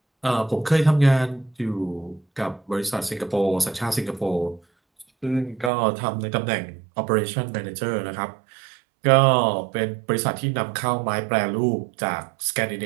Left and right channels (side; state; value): left; drops out; at 5.7 s